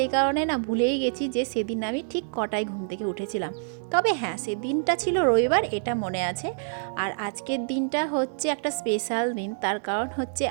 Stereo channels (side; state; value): left; silent; digital silence